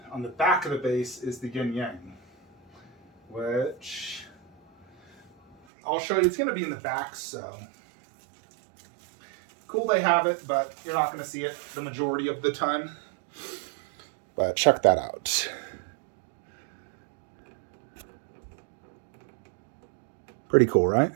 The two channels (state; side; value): drops out; left; at 5.6 s